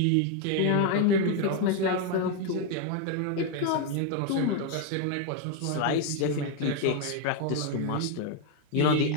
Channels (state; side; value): different; both; correlation 0.01